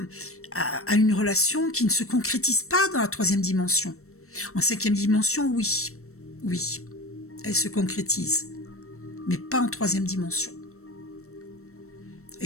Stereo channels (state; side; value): late; right; 0.63 ms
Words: une relation qui ne se concrétise pas dans la 3e dimension. En 5e dimension, oui. Oui, elle se concrétise. Mais pas en 3e dimension.